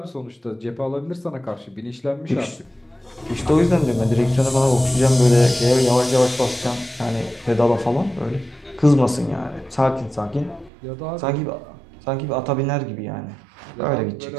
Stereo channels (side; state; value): left; drops out; at 10.7 s